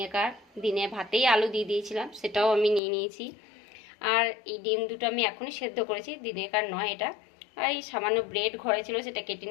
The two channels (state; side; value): drops out; right; at 2.8 s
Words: দিনে ভাতেই আলু দিয়ে দিয়েছিলাম, সেটাও আমি নিয়ে নিয়েছি। আর এই ডিম দুটো আমি এখনই সেদ্ধ করেছি, দিনেকার নয় এটা। আর এই সামান্য ব্রেড ঘরে ছিল, সেটা কেটে